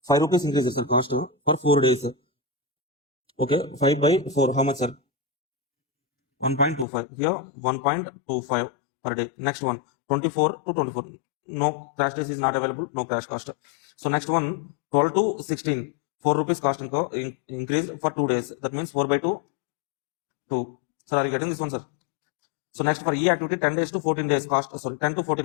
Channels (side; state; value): right; drops out; at 6.9 s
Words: 5 rupees increases, sir, cost for 4 days, sir. Okay, 5 by 4, how much, sir? 1.25. Here, 1.25 per day. Next one, 24 to 24. No crash days is not available, no crash cost. So next one, 12 to 16. 4 rupees cost increase for 2 days. That means 4 by 2, 2. Sir, are you getting this one, sir? So next for E activity, 10 days to 14 days cost, sorry, 10 to